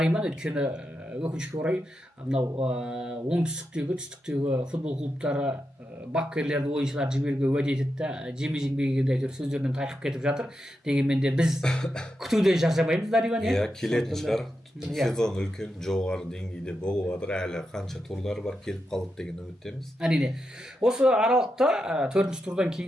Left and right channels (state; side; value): normal; both; correlation 0.87